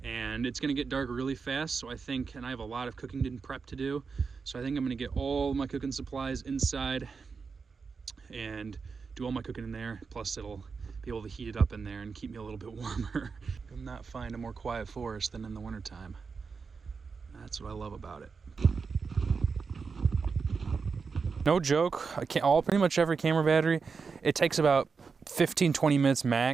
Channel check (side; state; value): left; quieter; 5.2 dB